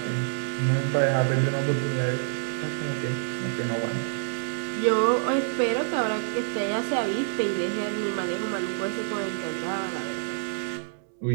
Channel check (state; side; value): silent; left; digital silence